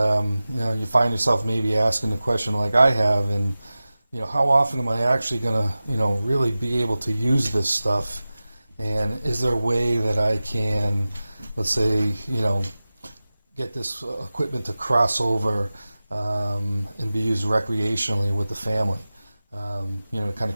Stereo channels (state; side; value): inverted; both; correlation -0.96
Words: you find yourself maybe asking the question like I have, and how often am I actually going to really be able to use this stuff, and is there a way that I can, let's say, get this equipment to cross over and be used recreationally with the family, to kind of